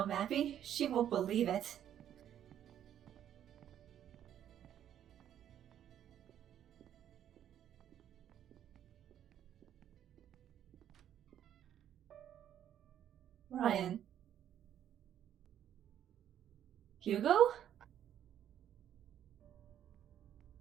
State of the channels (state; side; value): quieter; left; 10.4 dB